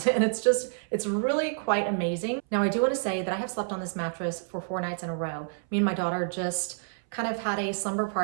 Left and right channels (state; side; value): silent; left; 59 dB below the other